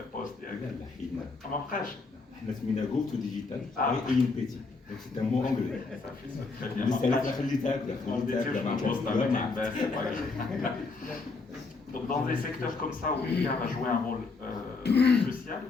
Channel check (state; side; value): quieter; right; 4.0 dB